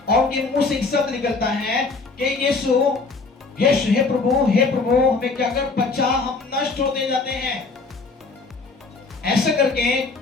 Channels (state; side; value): quieter; right; 4.0 dB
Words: और उनके मुंह से एक शब्द निकलता है कि यीशु, यीशु, हे प्रभु, हे प्रभु हमें क्या कर, बचा, हम नष्ट होते जाते हैं। ऐसा करके